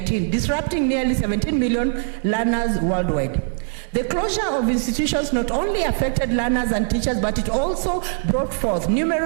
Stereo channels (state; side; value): silent; left; 61 dB below the other